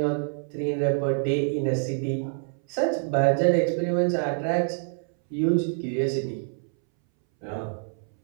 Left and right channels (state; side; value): silent; left; 61 dB below the other